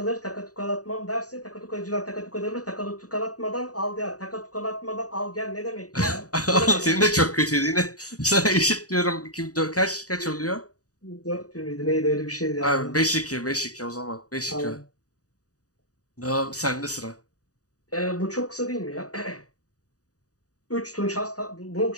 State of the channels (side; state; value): right; late; 0.67 ms